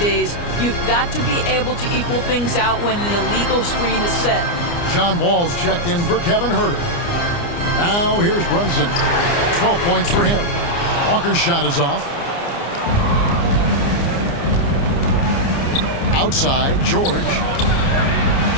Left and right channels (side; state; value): right; late; 29 ms